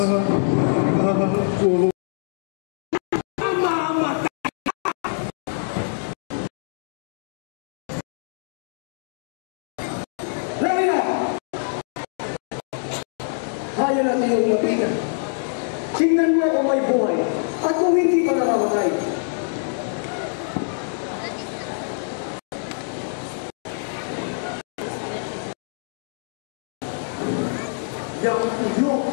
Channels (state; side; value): silent; right; digital silence